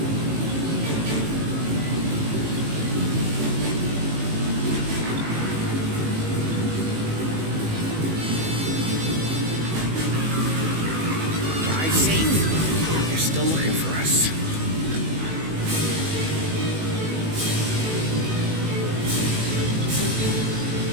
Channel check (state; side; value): late; left; 19 ms